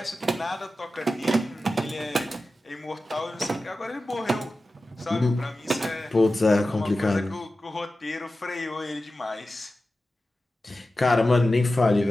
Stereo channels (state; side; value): normal; both; correlation 0.94